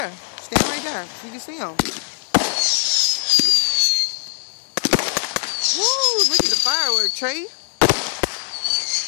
stand right there so you can see them. Woo, look at the firework, Trey.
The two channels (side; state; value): right; silent; 65 dB below the other